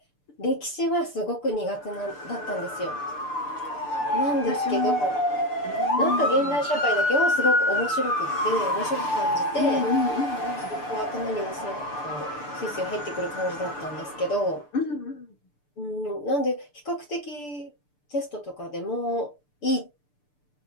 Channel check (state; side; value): late; right; 6.8 ms